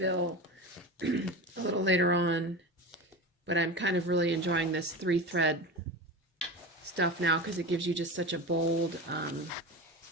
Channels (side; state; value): both; normal; correlation 0.27